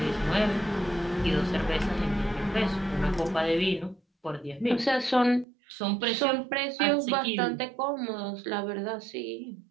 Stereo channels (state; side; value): drops out; left; at 5.5 s